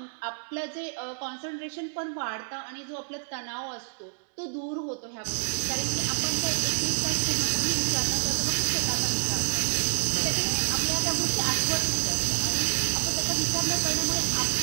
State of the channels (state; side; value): silent; left; 59 dB below the other